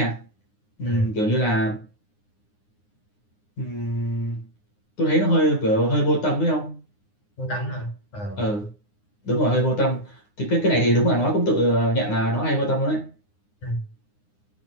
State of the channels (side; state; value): right; late; 9.7 ms